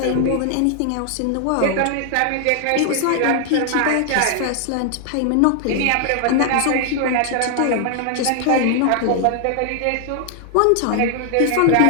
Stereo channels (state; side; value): different; both; correlation 0.00